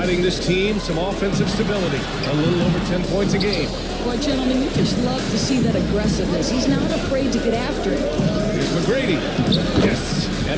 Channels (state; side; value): identical; both; correlation 1.00